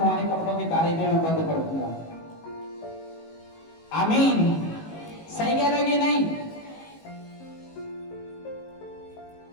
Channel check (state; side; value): late; right; 18 ms